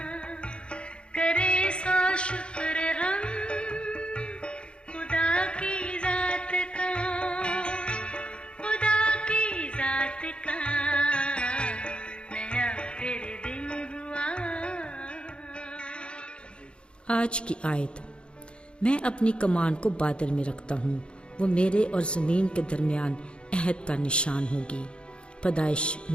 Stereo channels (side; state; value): right; late; 0.056 ms